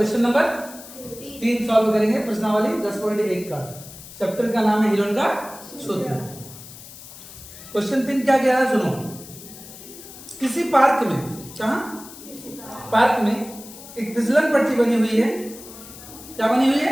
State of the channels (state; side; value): noise; left; hiss, 16 dB below the sound